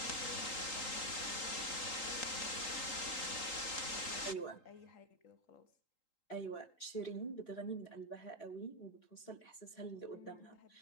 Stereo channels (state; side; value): late; right; 3.8 ms